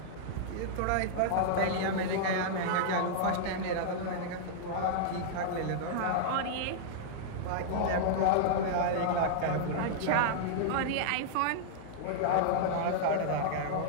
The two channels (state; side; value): different; both; correlation -0.02